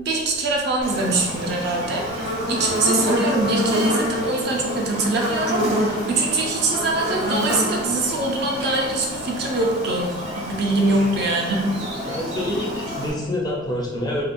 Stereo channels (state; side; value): noise; left; rumble, 22 dB below the sound